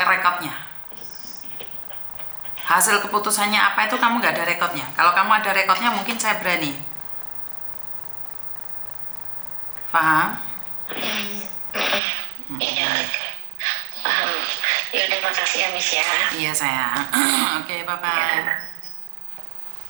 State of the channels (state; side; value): drops out; left; at 12.0 s